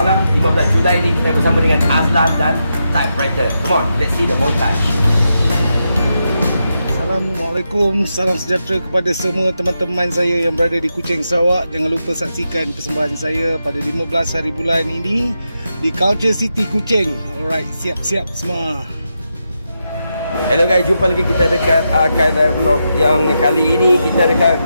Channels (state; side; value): inverted; both; correlation -0.86